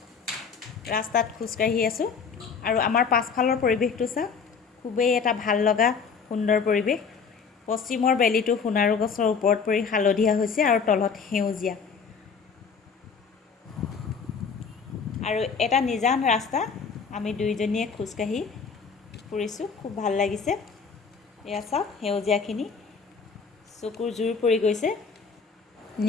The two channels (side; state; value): right; quieter; 5.7 dB